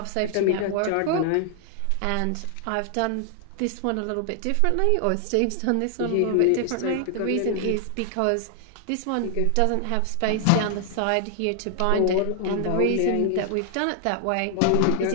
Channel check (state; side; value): different; both; correlation 0.00